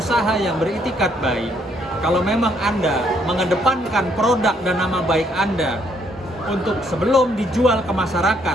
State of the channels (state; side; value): normal; both; correlation 0.69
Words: yang beritikat baik, kalau memang Anda mengedepankan produk dan nama baik Anda untuk sebelum dijual ke